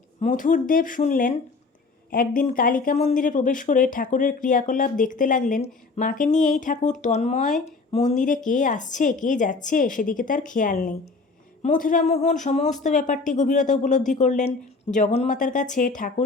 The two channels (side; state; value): right; quieter; 4.0 dB